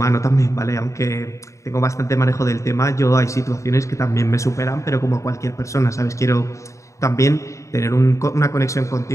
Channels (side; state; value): right; late; 0.15 ms